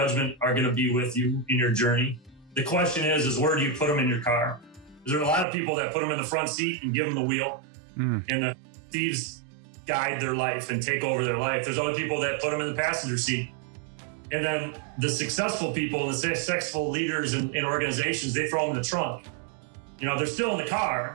are going to be with you in your journey. The question is where do you put them in your car? There are a lot of people that put them in the front seat and give them the wheel, and the thieves guide their life and take over their life. There's other people that put them in the passenger seat. And then the successful people, the successful leaders in organizations, they throw them in the trunk. You know, they're still in the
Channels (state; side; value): drops out; left; at 5.5 s